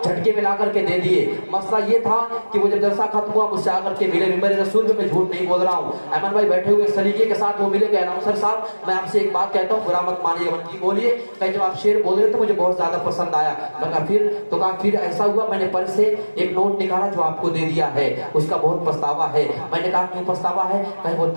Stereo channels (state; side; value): inverted; both; correlation -1.00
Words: جھٹکے میں لا کر کے دے دیے. مسئلہ یہ تھا کہ وہ جب جلسہ ختم ہوا مجھ سے آ کر کے ملے. ممبر رسول میں جھوٹ نہیں بول رہا ہوں. احمد بھائی بیٹھے ہوئے سلیقے کے ساتھ وہ ملے کہ اناؤنسر صاحب میں آپ سے ایک بات کہتا ہوں, برا مت مانیے. جی بولیے. کہ جب آپ شعر بول رہے تو مجھے بہت زیادہ پسند آیا. میں کہا پھر, تو کہا پھر ایسا ہوا میں نے پرس سے ایک نوٹ نکالا جو آپ کو دے دیا ہے, اس کا بہت پچھتاوا ہے. میں نے کہا کیوں پچھتاوا ہے؟ کہ وہ